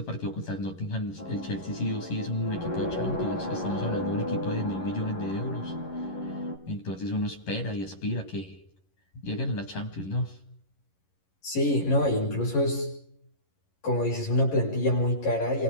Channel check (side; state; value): right; late; 11 ms